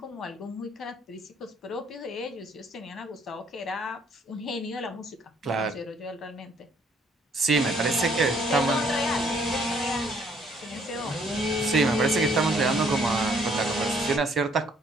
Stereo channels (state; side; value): normal; both; correlation 0.64